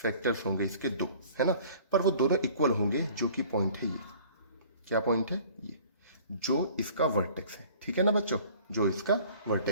होंगे इसके 2, है ना, पर वो दोनों इक्वल होंगे, जो कि पॉइंट है ये। क्या पॉइंट है? ये जो इसका वर्टेक्स है। ठीक है ना बच्चों, जो इसका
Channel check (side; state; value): both; inverted; correlation -0.50